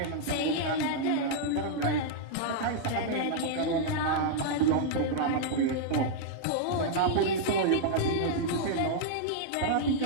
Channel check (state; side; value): different; both; correlation -0.01